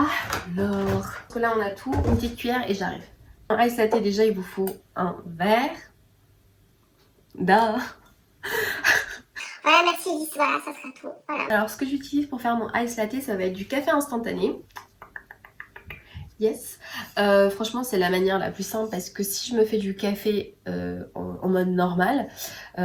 là, on a tout, une petite cuillère et j'arrive. En ice latte, déjà, il vous faut un verre. Duh. Voilà, merci Lys, voilà, ça sera tout. Voilà. Alors, ce que j'utilise pour faire mon ice latte, ça va être du café instantané. Yes. Franchement, c'est la manière la plus simple parce que si je me fais du café en mode normal,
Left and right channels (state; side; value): identical; both; correlation 1.00